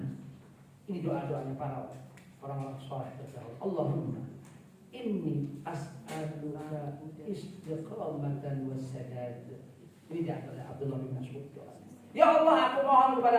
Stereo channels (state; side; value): identical; both; correlation 1.00